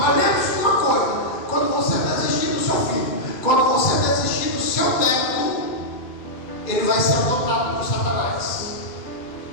lembre-se de uma coisa: quando você desistir do seu filho, quando você desistir do seu neto, ele vai ser adotado por Satanás.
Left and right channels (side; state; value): right; late; 2.4 ms